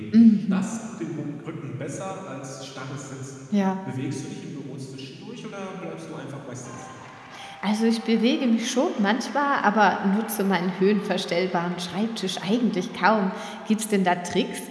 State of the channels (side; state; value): both; identical; correlation 1.00